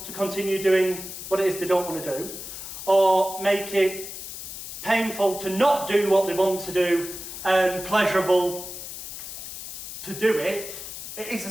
to continue doing what it is they don't want to do, or make it painful to not do what they want to do and pleasurable to do it, it is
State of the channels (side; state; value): left; noise; hiss, 9 dB below the sound